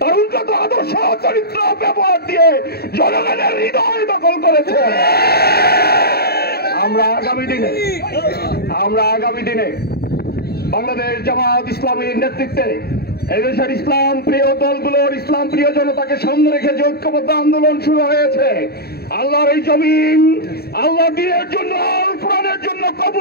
উন্নত আদর্শ চরিত্র ব্যবহার দিয়ে জনগণের হৃদয় দখল করেছে। আমরা আগামী দিনে বাংলাদেশ জামাত ইসলামীর নেতৃত্বে এদেশের ইসলাম প্রিয় দলগুলোর ইসলাম প্রিয় জনতাকে সামনে রেখে যে ঐক্যবদ্ধ আন্দোলন শুরু হয়েছে, আল্লাহর এই জমিন আল্লাহ দ্বীনের জন্য, কোরআনের জন্য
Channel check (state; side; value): late; right; 0.46 ms